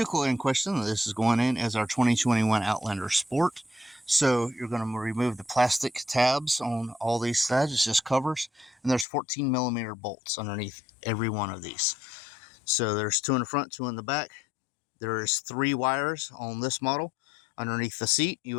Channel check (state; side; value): drops out; right; at 9.1 s